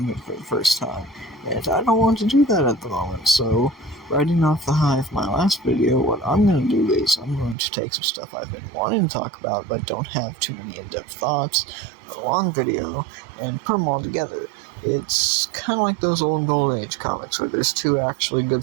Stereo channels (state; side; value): drops out; left; at 7.6 s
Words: for the first time, and I don't want to do that at the moment, so riding off the high of my last video, what I'm going to do is I'm going to take some stuff I've been wanting to talk about, but don't have too many in-depth thoughts, a long video, and put them all together. It's kind of like those old Golden Age comics where there's two actually good